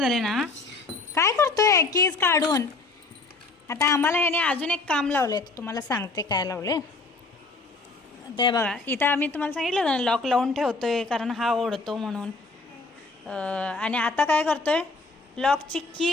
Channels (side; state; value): right; quieter; 3.6 dB